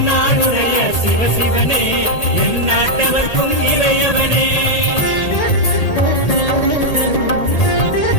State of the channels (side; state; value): right; late; 1.8 ms